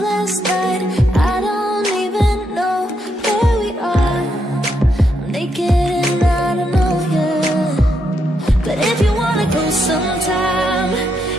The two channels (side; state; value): both; normal; correlation 0.80